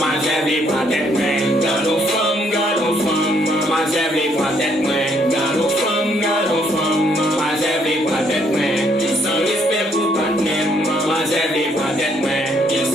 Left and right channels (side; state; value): both; normal; correlation 0.69